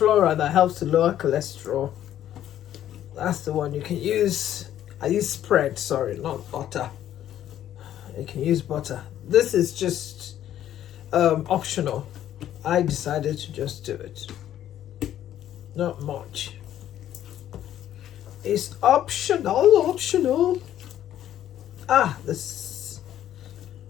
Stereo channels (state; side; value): quieter; right; 11.6 dB